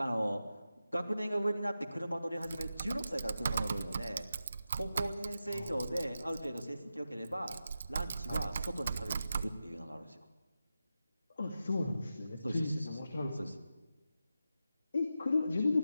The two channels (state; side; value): inverted; both; correlation -0.90